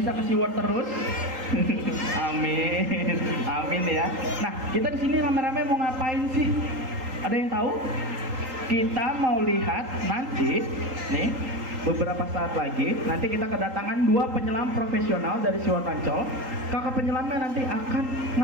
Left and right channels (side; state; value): left; late; 3.8 ms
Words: ke SeaWorld terus. Amin. Amin ya. Nah, kita di sini rame-rame mau ngapain sih? Ada yang tahu? Kita mau lihat nanti nih, beberapa saat lagi nanti kita kedatangan 2 penyelam profesional dari SeaWorld Ancol. Kakak penyelamnya nanti akan